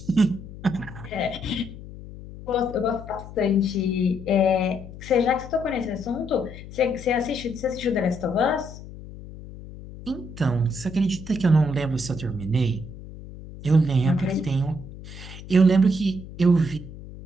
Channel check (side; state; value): left; noise; hum, 14 dB below the sound